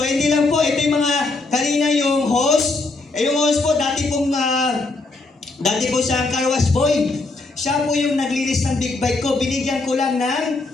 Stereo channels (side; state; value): right; quieter; 3.4 dB